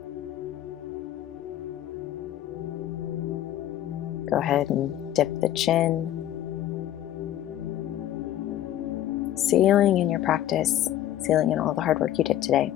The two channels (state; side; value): quieter; right; 12.5 dB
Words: Go ahead and dip the chin. Sealing in your practice, sealing in all the hard work you did today.